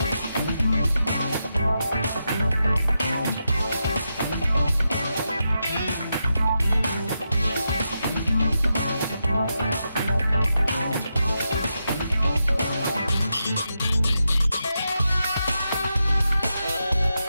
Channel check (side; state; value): both; inverted; correlation -0.86